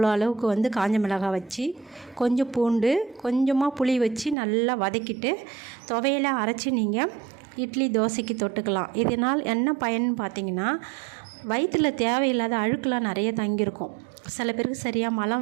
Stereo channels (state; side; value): drops out; left; at 4.4 s